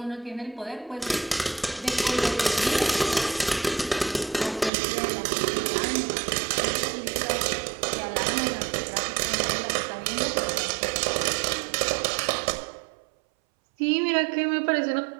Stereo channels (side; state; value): left; drops out; at 4.7 s